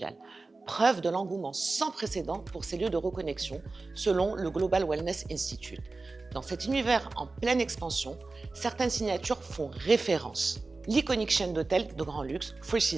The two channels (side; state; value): left; quieter; 3.6 dB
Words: Preuve de l'engouement sans précédent pour ces lieux de reconnexion, selon le Global Wellness Institute. Dans cet univers en pleine expansion, certaines signatures font référence. L'iconique chaîne d'hôtels de grand luxe, Four